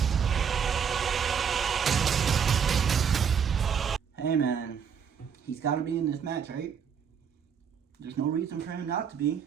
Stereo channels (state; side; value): quieter; left; 7.2 dB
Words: Hey man, he's gotta be in this match, right? There's no reason for him not to be.